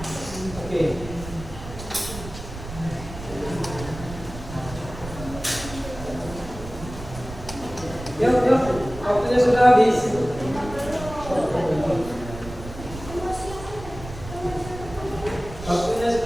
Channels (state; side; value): noise; right; rumble, 12 dB below the sound